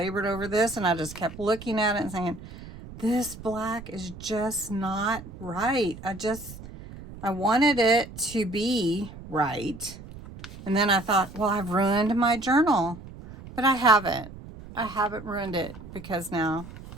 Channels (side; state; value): right; noise; rumble, 15 dB below the sound